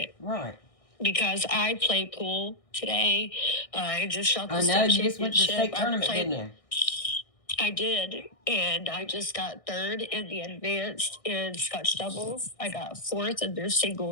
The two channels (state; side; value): late; right; 1.6 ms